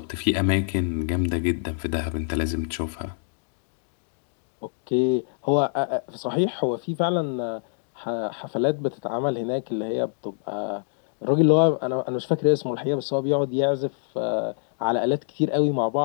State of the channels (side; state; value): right; silent; digital silence